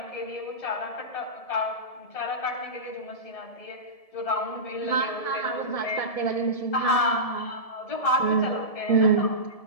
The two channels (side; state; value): right; late; 1.7 ms